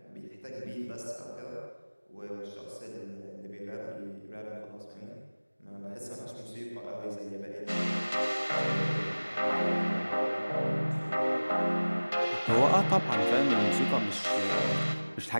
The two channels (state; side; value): inverted; both; correlation -1.00